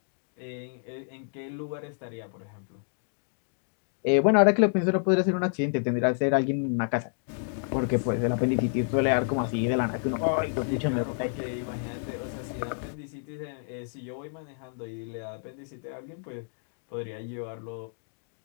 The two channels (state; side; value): silent; right; digital silence